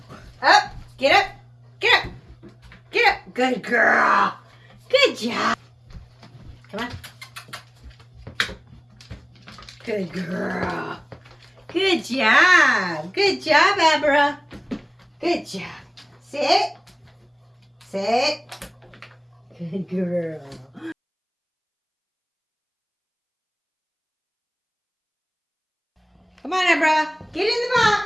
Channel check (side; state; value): both; identical; correlation 1.00